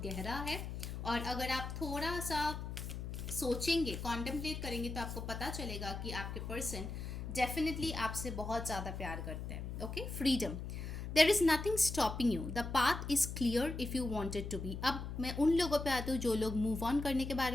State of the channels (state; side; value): noise; left; hum, 6 dB below the sound